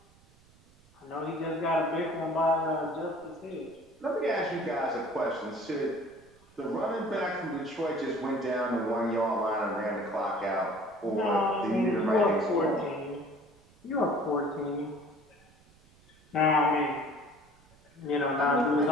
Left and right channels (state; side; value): noise; right; rumble, 29 dB below the sound